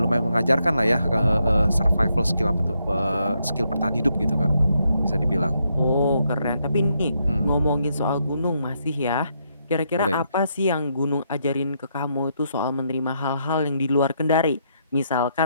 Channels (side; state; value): both; inverted; correlation -0.78